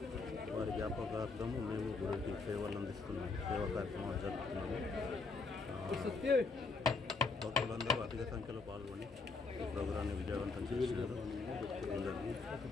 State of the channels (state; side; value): quieter; right; 4.0 dB